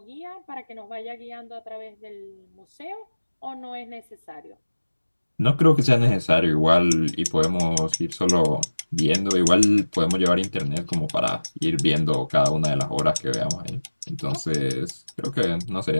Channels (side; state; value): both; inverted; correlation -1.00